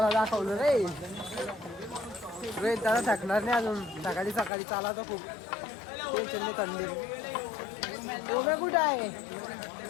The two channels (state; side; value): drops out; right; at 4.5 s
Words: दाखवलं रे. रोहित दादा थकणार नाही अजून. सकाळी चाला तर खूप टेन्शन नाही. थंडी ओमे कुठं आहे?